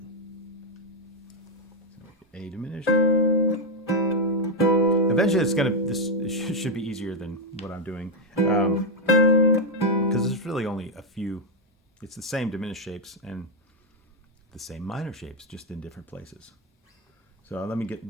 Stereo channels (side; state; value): both; normal; correlation 0.02